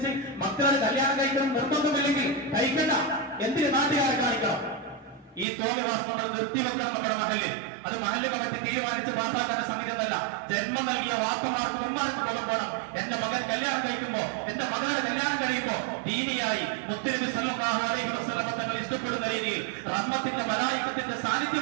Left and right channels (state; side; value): drops out; left; at 5.5 s